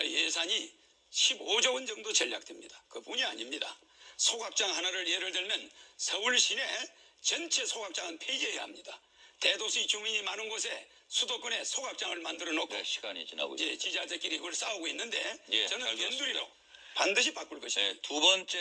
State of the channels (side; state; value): both; identical; correlation 1.00